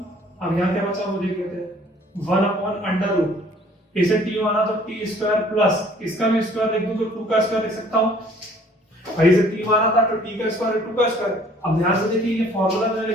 अब यहाँ क्या बचा वो देख लेते हैं, 1/√, इसे t माना तो t² प्लस इसका भी स्क्वायर लिख दूं तो 2 का स्क्वायर लिख सकता हूं, भाई इसे t माना था तो t का स्क्वायर 2 का स्क्वायर। अब ध्यान से देखिए ये फार्मूला मैंने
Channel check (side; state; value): both; normal; correlation 0.56